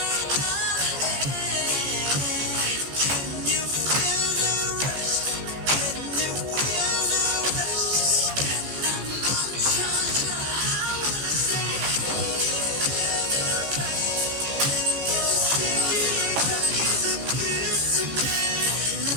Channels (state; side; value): late; left; 15 ms